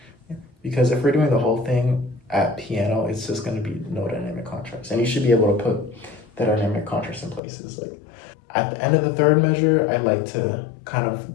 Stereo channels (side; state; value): right; drops out; at 7.4 s